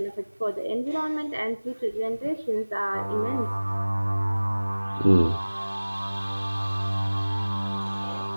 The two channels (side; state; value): both; inverted; correlation -1.00